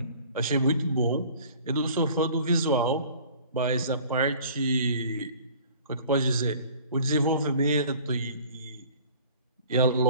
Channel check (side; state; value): both; inverted; correlation -0.49